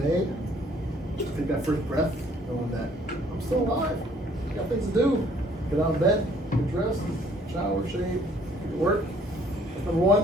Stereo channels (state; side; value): normal; both; correlation 0.60